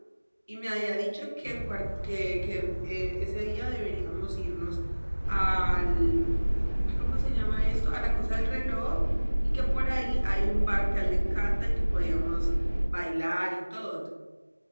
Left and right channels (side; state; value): both; inverted; correlation -1.00